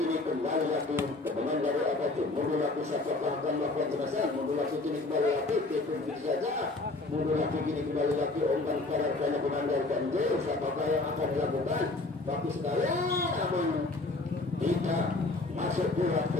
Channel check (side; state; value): right; quieter; 3.1 dB